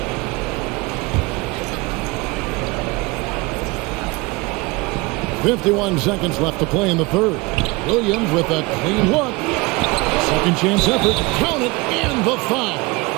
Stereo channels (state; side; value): quieter; left; 24.5 dB